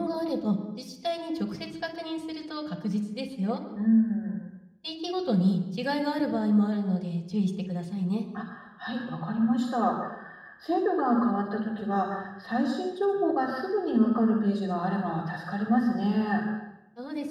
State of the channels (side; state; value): both; identical; correlation 1.00